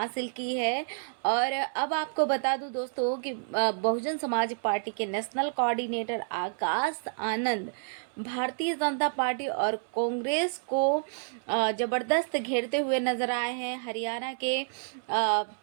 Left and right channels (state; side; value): silent; left; 58 dB below the other